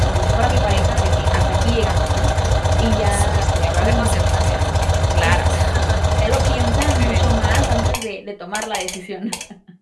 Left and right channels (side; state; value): both; identical; correlation 1.00